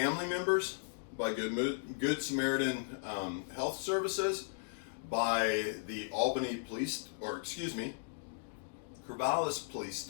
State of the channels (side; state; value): right; silent; digital silence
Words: members, by Good Samaritan Health Services, by the Corvallis Police